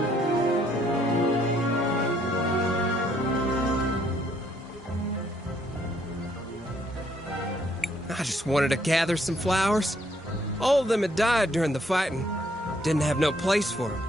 I just wanted to gather some flowers. All of them had died during the fighting. Didn't have no place for them.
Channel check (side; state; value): both; normal; correlation 0.68